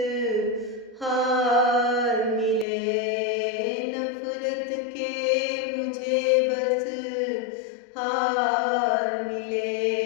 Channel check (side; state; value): right; drops out; at 2.7 s